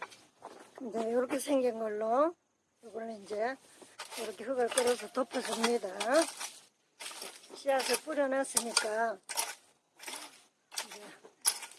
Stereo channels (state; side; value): identical; both; correlation 1.00